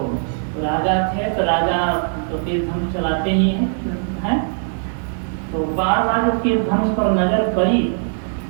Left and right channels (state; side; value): silent; left; digital silence